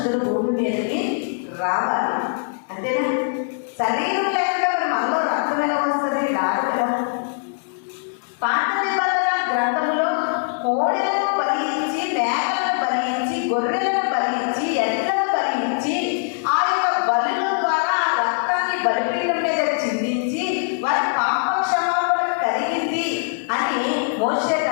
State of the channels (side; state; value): right; silent; digital silence